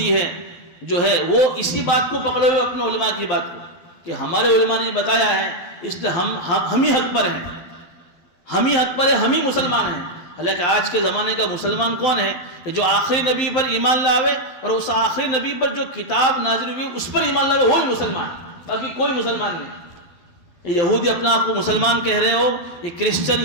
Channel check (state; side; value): late; right; 12 ms